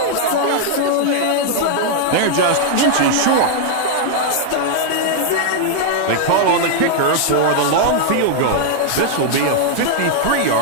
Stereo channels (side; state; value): both; different; correlation 0.00